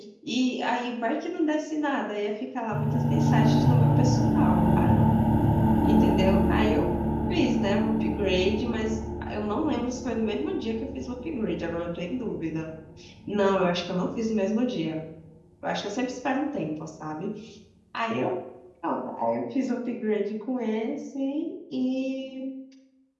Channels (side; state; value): both; identical; correlation 1.00